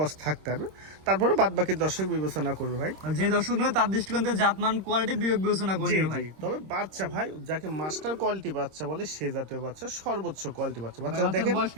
থাকতে হবে, তারপরে বাদ বাকি দর্শক বিবেচনা করবে ভাই। যে দর্শক নয় তার দৃষ্টিকোণ থেকে জাতমান কোয়ালিটি বিবেক বিবেচনা করে জি নিও ভাই। জি, তবে বাচ্চা ভাই যাকে মাস্টার কোয়ালিটি বাচ্চা বলে সে জাতীয় বাচ্চা, সর্বোচ্চ কোয়ালিটি বাচ্চা। বাচ্চা বাচ্চার দেখেন বয়স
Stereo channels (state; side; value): late; left; 26 ms